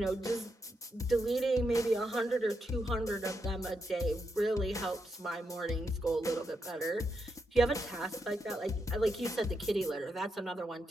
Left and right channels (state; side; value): normal; both; correlation 0.83